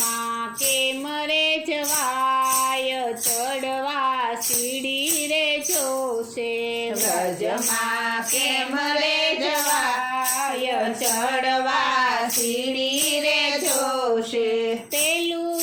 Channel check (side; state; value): both; identical; correlation 1.00